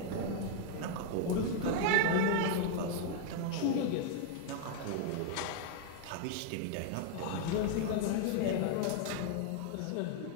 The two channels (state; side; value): different; both; correlation 0.00